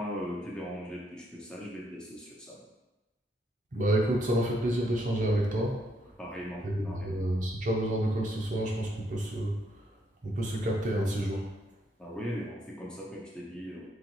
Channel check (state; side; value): normal; both; correlation 0.74